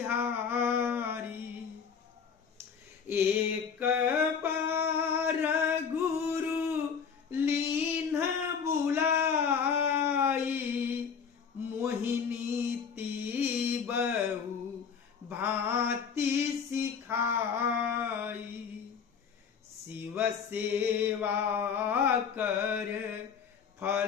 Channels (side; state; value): right; quieter; 6.5 dB